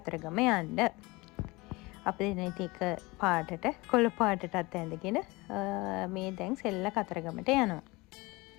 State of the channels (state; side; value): quieter; right; 23.6 dB